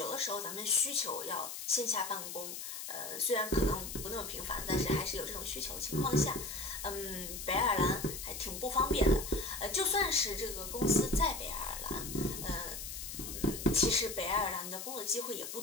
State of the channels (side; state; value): left; noise; hiss, 7 dB below the sound